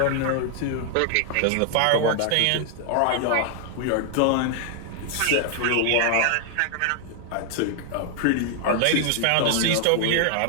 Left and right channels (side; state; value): both; different; correlation 0.00